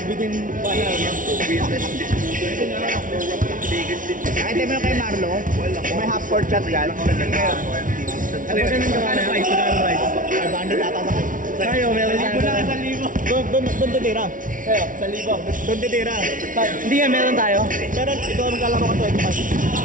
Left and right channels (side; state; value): left; late; 0.38 ms